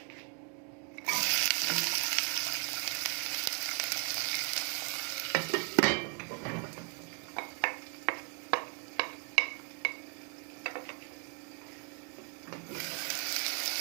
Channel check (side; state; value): left; quieter; 36.5 dB